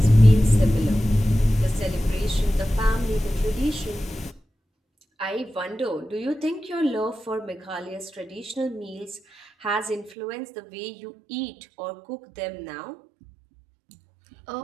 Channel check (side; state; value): left; drops out; at 10.1 s